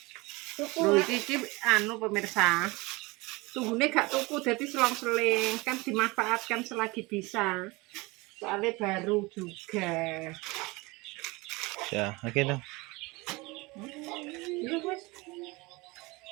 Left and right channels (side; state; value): left; quieter; 23.9 dB